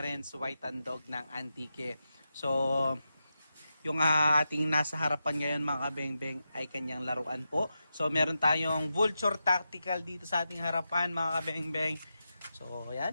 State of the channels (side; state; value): both; inverted; correlation -0.89